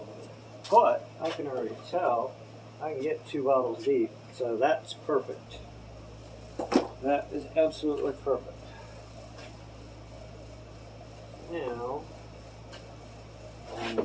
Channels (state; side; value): identical; both; correlation 1.00